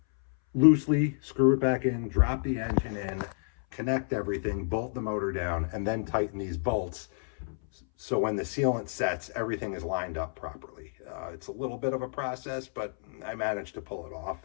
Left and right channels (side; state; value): right; silent; 58 dB below the other